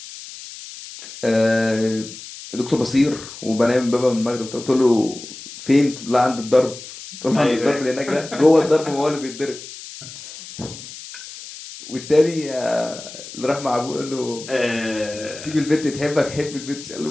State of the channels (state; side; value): noise; left; hiss, 14 dB below the sound